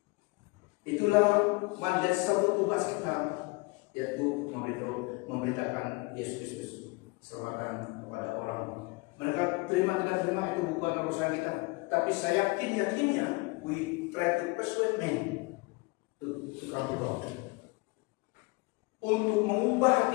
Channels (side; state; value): right; quieter; 26.2 dB